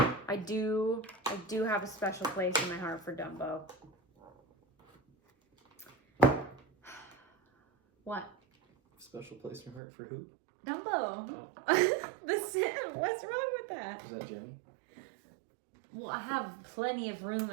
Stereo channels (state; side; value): drops out; left; at 9.8 s